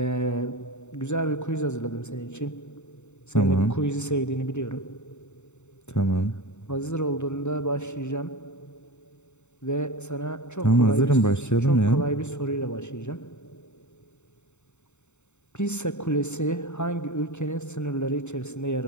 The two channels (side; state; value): right; late; 0.83 ms